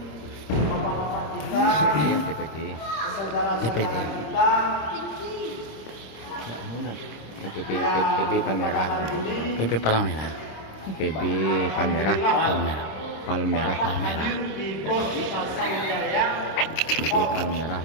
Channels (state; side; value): late; right; 26 ms